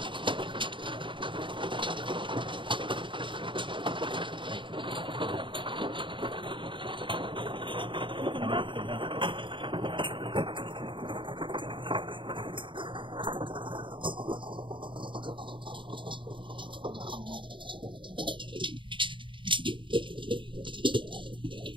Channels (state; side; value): late; left; 0.24 ms